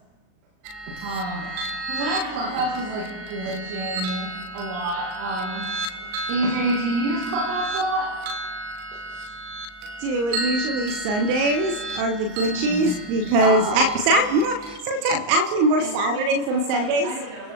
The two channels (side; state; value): left; late; 38 ms